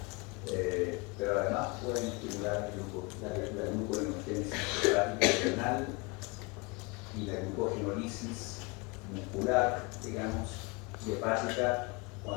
Pero además pueden estimular la gluconeogénesis hepática renal y la glucogenolisis muscular, digamos, y hepática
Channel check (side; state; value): right; quieter; 28.2 dB